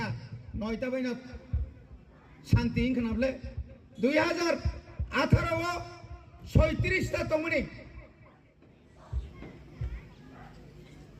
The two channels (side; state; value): both; identical; correlation 1.00